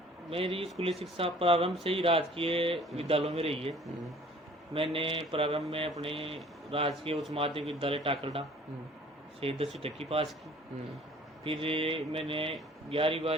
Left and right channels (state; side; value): normal; both; correlation 0.52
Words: मेरी स्कूली शिक्षा प्रारंभ से ही राजकीय विद्यालयों में रही है। मैंने प्रारंभ में अपने राजकीय उच्च माध्यमिक विद्यालय टाकरडा से 10वीं तक की पास की। फिर मैंने